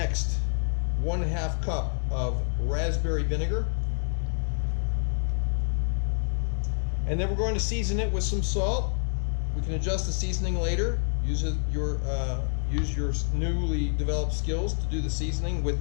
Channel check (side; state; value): right; silent; digital silence